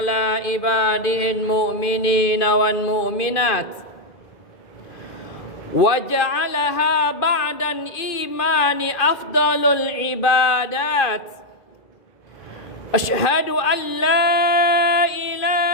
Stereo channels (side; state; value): right; late; 2.5 ms